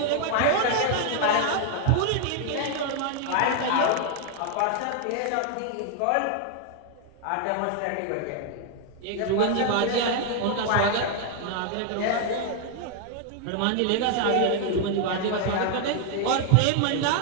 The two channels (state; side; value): different; both; correlation 0.00